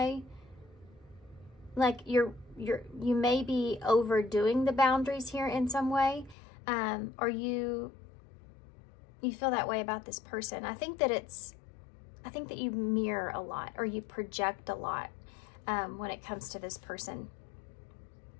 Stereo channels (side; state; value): right; drops out; at 6.4 s